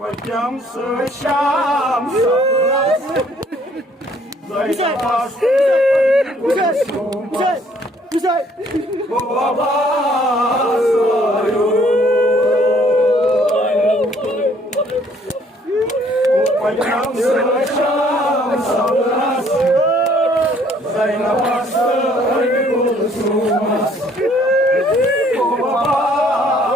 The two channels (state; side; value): normal; both; correlation 0.62